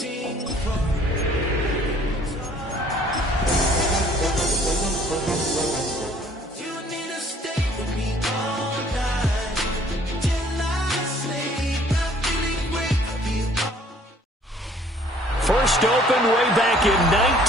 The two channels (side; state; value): both; normal; correlation 0.57